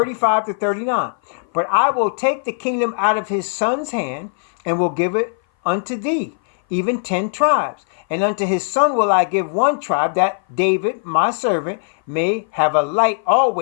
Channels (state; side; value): silent; right; 58 dB below the other